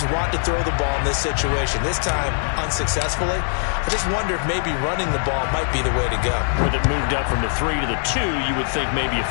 want to throw the ball in this situation, this time unsuccessfully. I just wonder if maybe running the ball might be the way to go. With it moved up from the 3 to the 2, you would think maybe a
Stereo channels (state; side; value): silent; right; 64 dB below the other